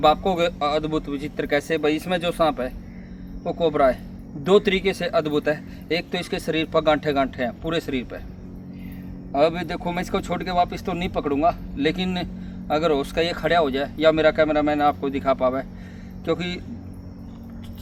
आपको अद्भुत विचित्र कैसे भाई, इसमें जो सांप है वो कोबरा है। दो तरीके से अद्भुत है। एक तो इसके शरीर पर गांठे गांठे हैं पूरे शरीर पर। अब देखो, मैं इसको छोड़ के वापस तो नहीं पकड़ूंगा, लेकिन अगर उसका ये खड़ा हो जाए या मेरा कैमरा मैन आपको दिखा पावे, क्योंकि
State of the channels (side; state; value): both; identical; correlation 1.00